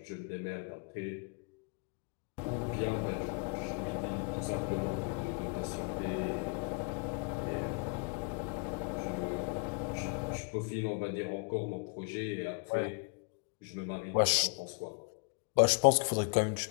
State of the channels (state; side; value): quieter; right; 35.5 dB